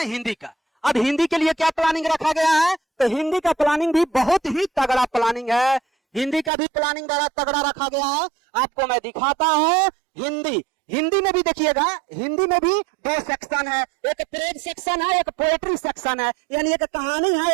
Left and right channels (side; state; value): left; drops out; at 6.5 s